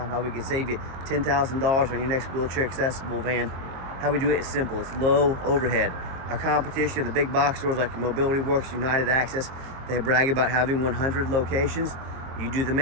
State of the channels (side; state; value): left; late; 23 ms